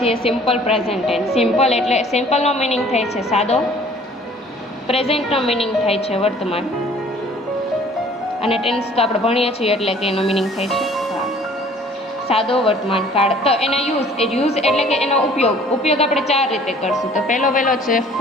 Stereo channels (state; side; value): normal; both; correlation 0.53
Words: સિમ્પલ પ્રેઝન્ટ ટેન્સ. સિમ્પલ એટલે સિમ્પલનો મિનિંગ થાય છે સાદો, પ્રેઝન્ટનો મિનિંગ થાય છે વર્તમાન, અને ટેન્સ તો આપણે ભણીએ છીએ એટલે કે એનો મિનિંગ થાય છે સાદો વર્તમાન કાળ. તો એના યુઝ એટલે કે એનો ઉપયોગ આપણે 4 રીતે કરશું. તો પહેલો છે